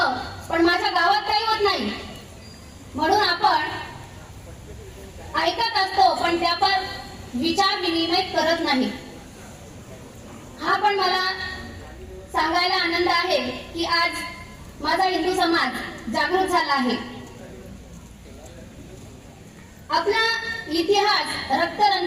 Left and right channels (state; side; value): identical; both; correlation 1.00